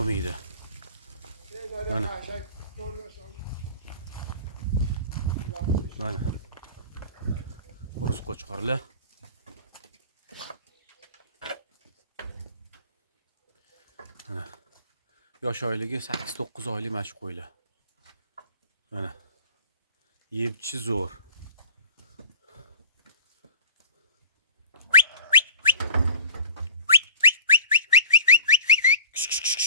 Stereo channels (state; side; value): inverted; both; correlation -0.43